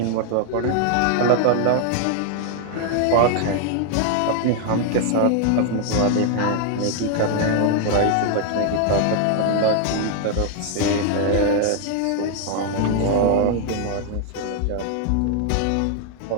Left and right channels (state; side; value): different; both; correlation 0.00